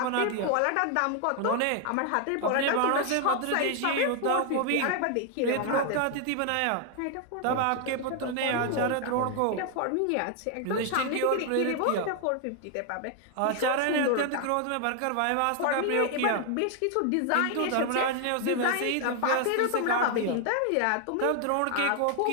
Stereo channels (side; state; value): both; different; correlation 0.00